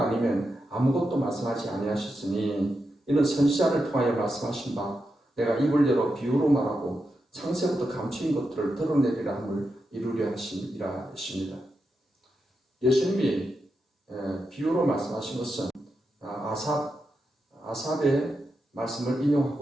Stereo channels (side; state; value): both; normal; correlation 0.87